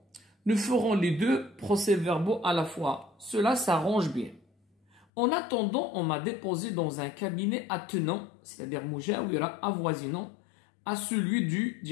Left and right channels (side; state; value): right; drops out; at 5.1 s